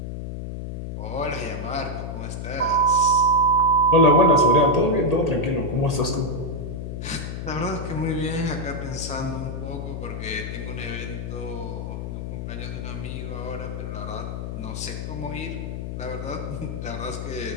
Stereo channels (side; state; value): left; noise; hum, 6 dB below the sound